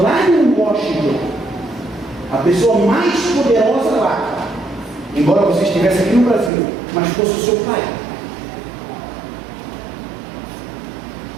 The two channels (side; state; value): left; drops out; at 6.5 s